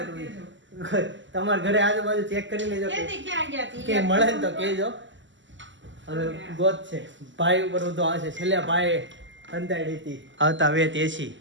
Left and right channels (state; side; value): late; left; 0.54 ms